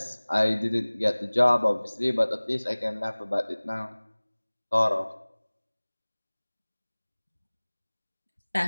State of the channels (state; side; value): inverted; both; correlation -1.00